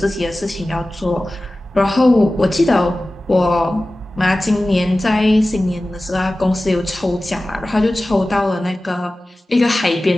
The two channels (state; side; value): normal; both; correlation 0.96